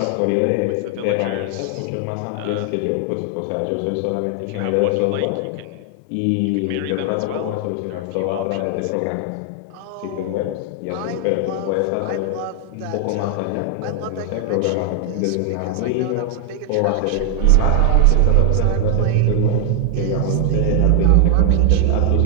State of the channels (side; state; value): both; different; correlation 0.00